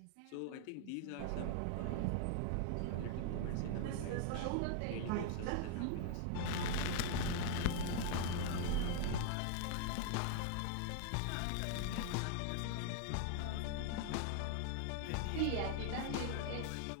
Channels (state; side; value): different; both; correlation 0.00